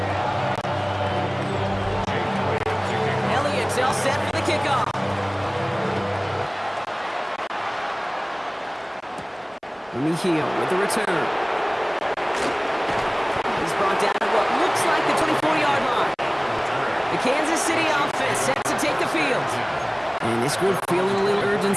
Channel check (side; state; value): both; identical; correlation 1.00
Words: Elliott's all set for the kickoff. Hill with the return. He's brought down at what looks like the 24-yard line. The Kansas City offense set to take the field. And this group feeling a little